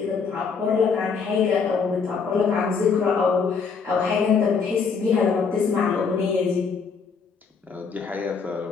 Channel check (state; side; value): quieter; right; 5.5 dB